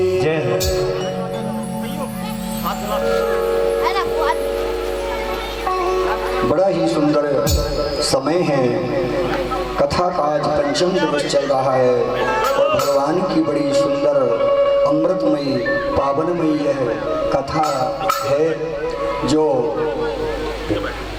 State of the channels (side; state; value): both; identical; correlation 1.00